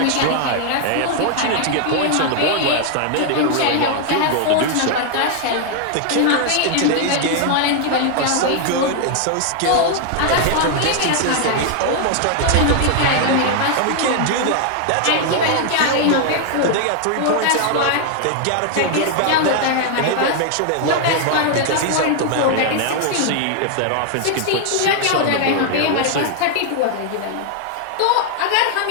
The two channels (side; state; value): both; different; correlation 0.00